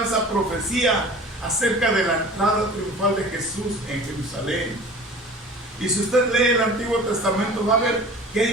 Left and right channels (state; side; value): normal; both; correlation 0.42